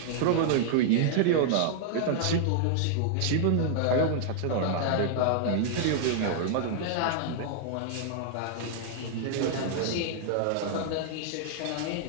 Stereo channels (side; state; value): both; different; correlation -0.01